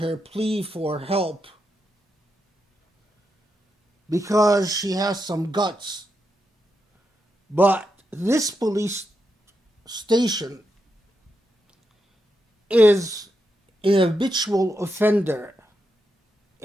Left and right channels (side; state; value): both; normal; correlation 0.85